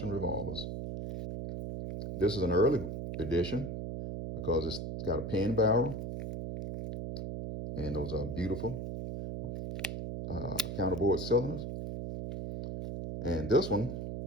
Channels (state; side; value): noise; right; hum, 5 dB below the sound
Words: revolvers. This is an early edition because it's got a pin barrel, and those are beautiful counterbore cylinders. And this one,